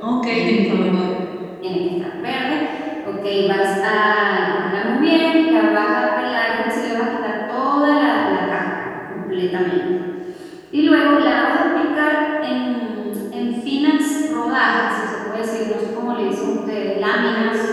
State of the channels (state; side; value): identical; both; correlation 1.00